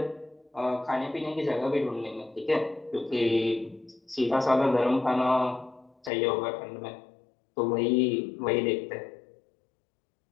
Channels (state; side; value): drops out; right; at 6.1 s